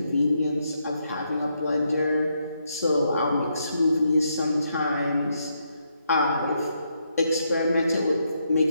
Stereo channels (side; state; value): both; inverted; correlation -0.78